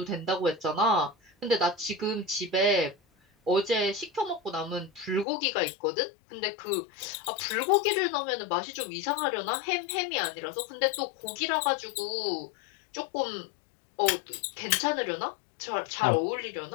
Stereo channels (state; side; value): drops out; right; at 5.2 s